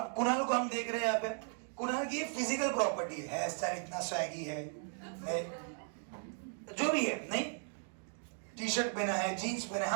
कुणाल को हम देख रहे हैं यहाँ पे, कुणाल की फिजिकल प्रॉपर्टी है, स्टाइल इतना स्वैगी है, जो भी है, नहीं टी शर्ट पहना है, जीन्स पहना है,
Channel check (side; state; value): left; silent; 53 dB below the other